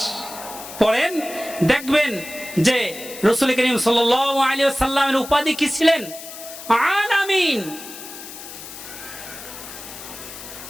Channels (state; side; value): noise; left; hiss, 13 dB below the sound